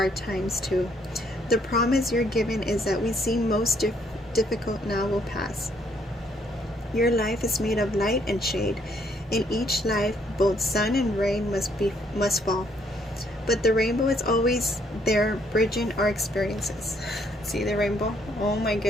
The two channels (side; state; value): both; normal; correlation 0.69